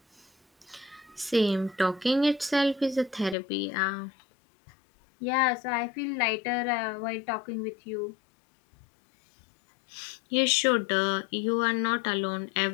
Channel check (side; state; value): right; drops out; at 3.4 s